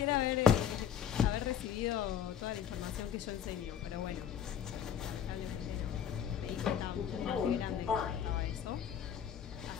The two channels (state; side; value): quieter; right; 8.8 dB